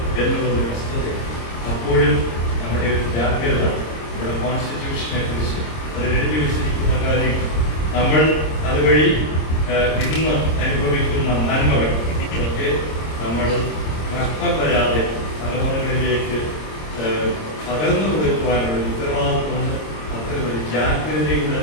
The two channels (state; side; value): late; right; 26 ms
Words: എന്നുള്ളൊരു വസ്തുതയാണ്. അപ്പോഴും നമ്മുടെ ഒരു ജാഗ്രത, നമ്മുടെ കോൺസ്റ്റിറ്റ്യൂഷനെ കുറിച്ച് അതിൽ എഴുതി വെച്ചിരിക്കുന്ന കാര്യം, നമ്മൾ അതുവഴി ഇന്ന് അനുഭവിക്കുന്ന നന്മകൾ ഇതൊക്കെ നമ്മൾ നഷ്ടം വരാതെ തലമുറകളിലേക്ക് പകർന്നു കൊടുക്കുവാനുള്ള ഉത്തരവാദിത്വമുണ്ട്. അത്തരമൊരു ജാഗ്രതയുടെ